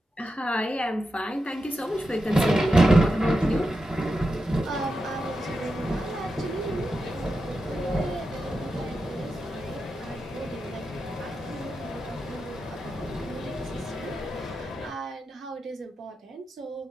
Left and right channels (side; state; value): both; normal; correlation 0.89